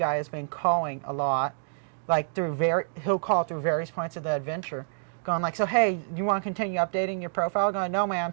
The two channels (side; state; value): left; silent; digital silence